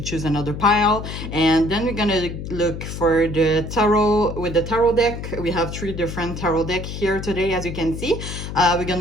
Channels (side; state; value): left; noise; hum, 7 dB below the sound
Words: choose another pile. And then we're gonna look for the tarot with the tarot deck. We have three different tarot decks here today, as you can see. We're